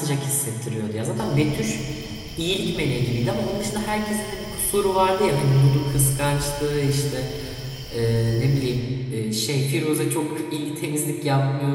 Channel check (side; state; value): both; identical; correlation 1.00